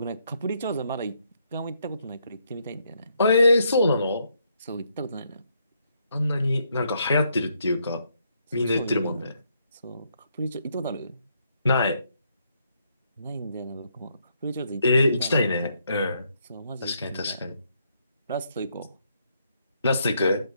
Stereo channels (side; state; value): both; inverted; correlation -0.74